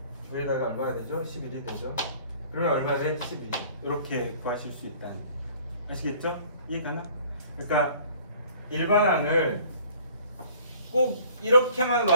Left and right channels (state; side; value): inverted; both; correlation -0.53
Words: 부에다가 얼마가 되죠? 11이 되죠. 그러면 얼마 돼? 12. 이렇게 구하실 수 있다는. 아시겠죠? 이해가나? 그러니까 일반항을 꼭 이렇게만